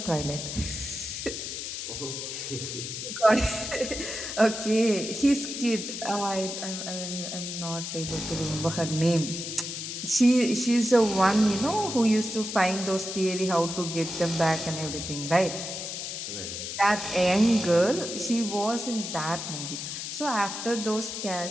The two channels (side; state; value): left; noise; hiss, 6 dB below the sound